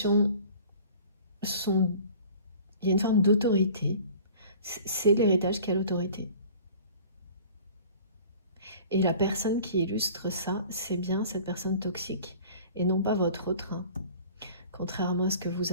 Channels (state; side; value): inverted; both; correlation -0.46